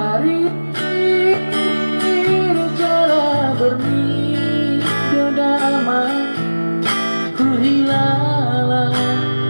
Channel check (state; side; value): inverted; both; correlation -1.00